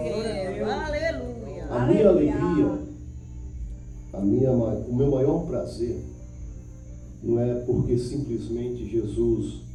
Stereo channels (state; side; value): identical; both; correlation 1.00